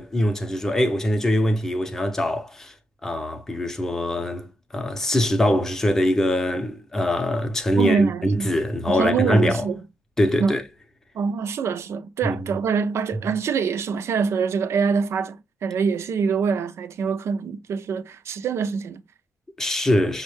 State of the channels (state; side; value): normal; both; correlation 0.82